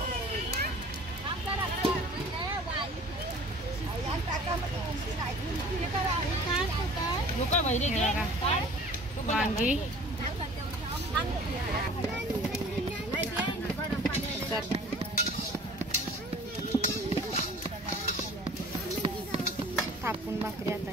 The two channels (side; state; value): both; normal; correlation 0.47